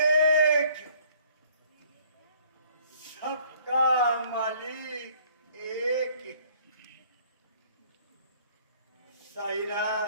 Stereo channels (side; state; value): both; inverted; correlation -0.58